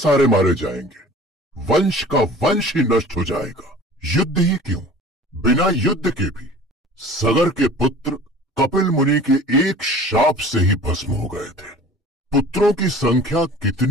मारे जाएंगे, वंश का वंश ही नष्ट हो जाएगा। युद्ध ही क्यों, बिना युद्ध के भी सगर के पुत्र कपिल मुनि के एक शाप से ही भस्म हो गए थे। पुत्रों की संख्या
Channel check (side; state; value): both; normal; correlation 0.44